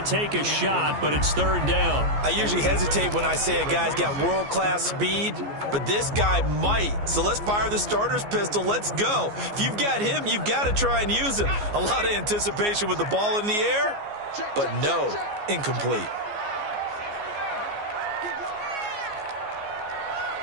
a shot, but it's 3rd down. I usually hesitate when I say a guy's got world-class speed, but this guy might. So let's fire the starter's pistol. Let's go. If you've got him, you've got to try and use him. A lot of anticipation with the ball in the air, but no, incomplete.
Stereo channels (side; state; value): left; late; 14 ms